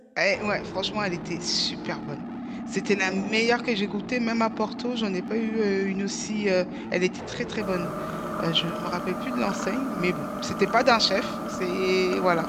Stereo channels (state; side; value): identical; both; correlation 1.00